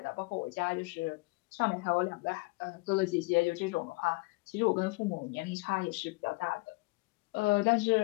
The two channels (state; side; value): quieter; right; 25.9 dB